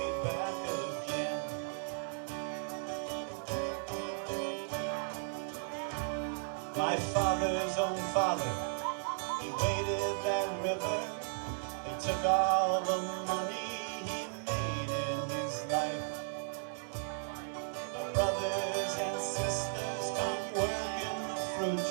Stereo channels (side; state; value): left; silent; digital silence